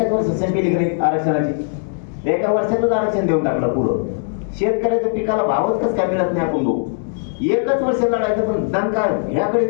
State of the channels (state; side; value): silent; right; digital silence